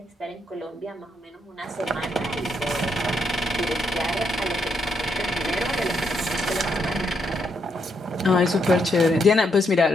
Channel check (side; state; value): both; normal; correlation 0.77